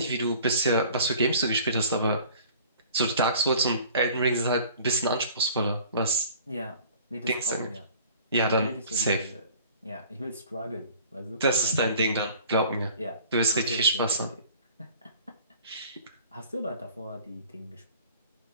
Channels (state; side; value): inverted; both; correlation -0.49